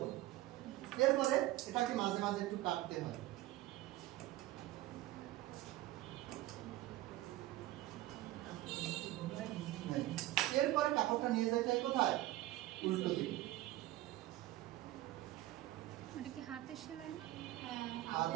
এরপরে এটাকে মাঝে মাঝে একটু কাটতে হয়। এরপরে কাপড়টা নিয়ে যাইতে হয় কোথায়? উল্টো দিকে। এটা কি হাতের সেলাই না?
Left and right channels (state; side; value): quieter; left; 16.2 dB